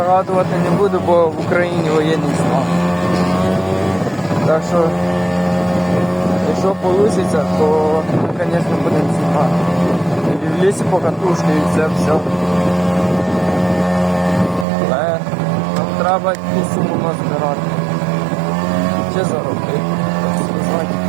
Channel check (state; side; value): drops out; left; at 14.7 s